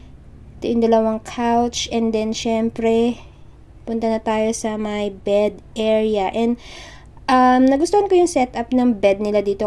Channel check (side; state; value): both; identical; correlation 1.00